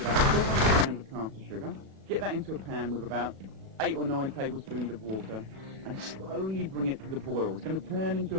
400 grams of caster sugar. Get that into a pan with about 8 or 9 tablespoons of water, and slowly bring it to the boil. It's going to turn into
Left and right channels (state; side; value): late; left; 37 ms